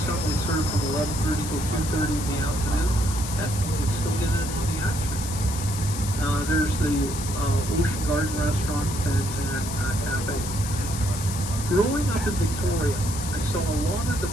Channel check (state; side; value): noise; left; hiss, 8 dB below the sound